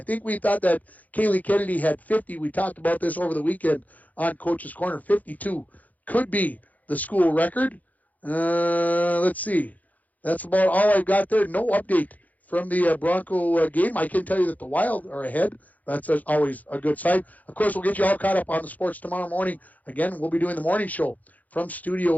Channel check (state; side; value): late; right; 0.079 ms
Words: think we thought that Kaylee Kennedy had 50. We talked about this over the weekend on Coach's Corner. 52 could be the school record. Let's see. That's about all I've got there. No update from the Bronco game. I can tell you that the Wild are ahead. That's always a good sign. Of course, we'll get you all caught up on the sports tomorrow morning. Again, we'll be doing the morning show from